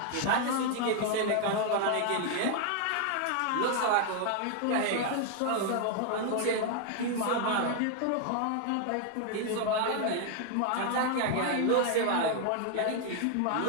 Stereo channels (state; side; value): different; both; correlation 0.00